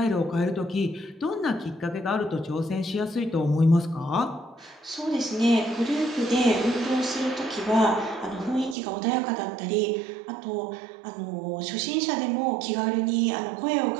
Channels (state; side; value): drops out; left; at 8.8 s